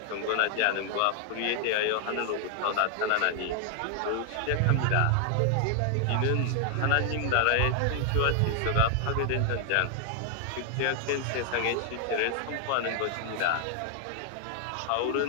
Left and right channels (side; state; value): both; different; correlation 0.00